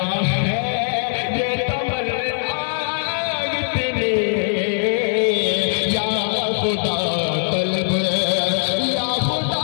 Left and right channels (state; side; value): silent; right; digital silence